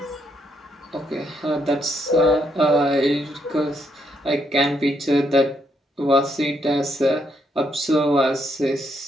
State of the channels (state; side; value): normal; both; correlation 0.76